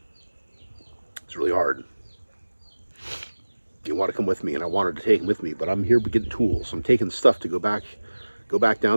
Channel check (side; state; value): both; inverted; correlation -1.00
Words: It's really hard. You want to come with me, and I wanted to take him with me, but I'm here getting tools. I'm taking stuff to go back